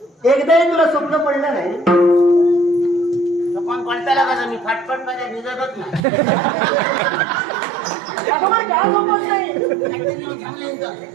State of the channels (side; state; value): left; drops out; at 6.1 s